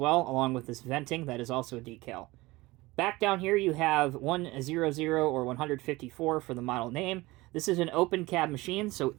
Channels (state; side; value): quieter; left; 20.7 dB